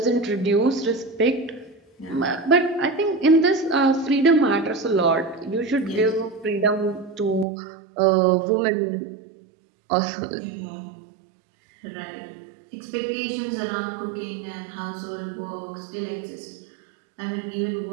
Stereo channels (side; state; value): left; drops out; at 7.5 s